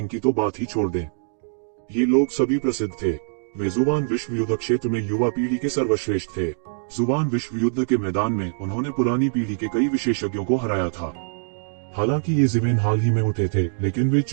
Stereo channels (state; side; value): silent; left; digital silence